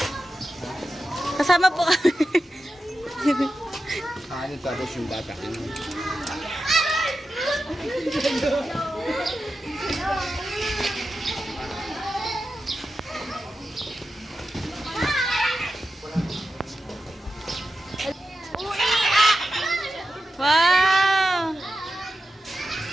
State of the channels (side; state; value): both; normal; correlation 0.91